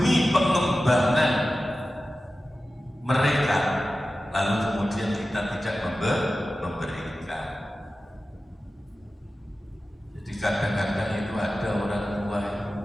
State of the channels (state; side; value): normal; both; correlation 0.95